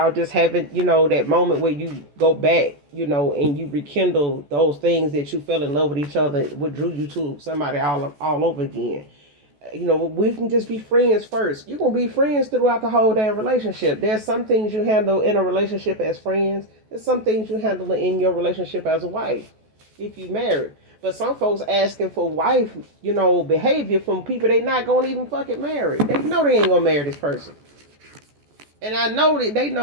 just having, that moment where you go back, and you rekindle those things that you fell in love with each other, what drew you to somebody all over again. We can just be friends first. You're going to be friends throughout the whole damn relationship. There's some things you handle in a relationship as friends. There's some things you handle in your relationship as a wife, if you married. But some folks asking for wife, behavior from people they not going to even fucking marry. They know they ain't going to marry this person. And I know that they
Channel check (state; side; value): late; left; 14 ms